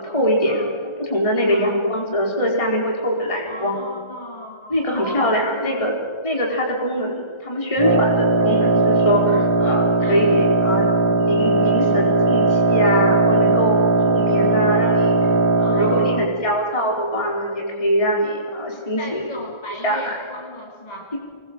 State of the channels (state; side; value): late; right; 1.4 ms